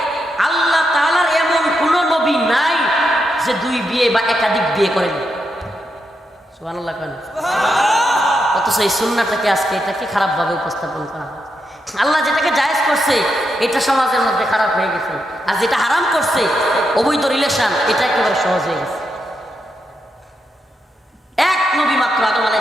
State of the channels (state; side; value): normal; both; correlation 0.83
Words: আল্লাহ তাআলার এমন কোনো নবী নাই যে দুই বিয়ে বা একাধিক বিয়ে করেন। সুবহানাল্লাহ কেন? অথচ এই সুন্নাহটাকে আজকে এটাকে খারাপভাবে উপস্থাপন করা হয়। আল্লাহ যেটাকে জায়েজ করছে এটা সমাজের মধ্যে খারাপ হয়ে গেছে, আর যেটা হারাম করছে অবৈধ রিলেশন, এটা একেবারে সহজ হয়ে গেছে। এক নবী মাত্র আদম